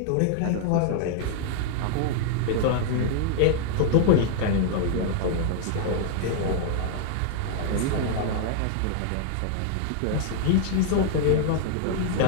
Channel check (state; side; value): different; both; correlation -0.01